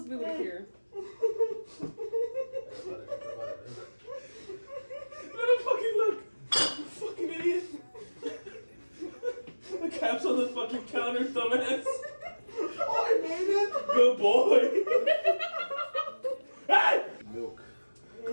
to be able to hear. Let him fucking look! You fucking idiot! The cap's on the fucking counter, dumbass! Oh, I made it! Good boy! Hey! Milk.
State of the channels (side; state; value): both; inverted; correlation -1.00